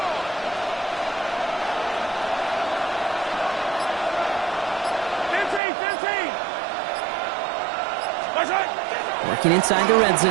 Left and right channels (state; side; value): drops out; left; at 5.6 s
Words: Working inside the red